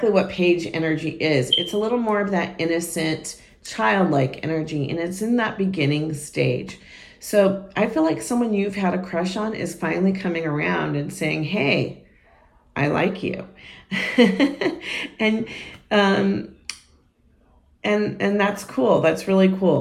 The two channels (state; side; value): identical; both; correlation 1.00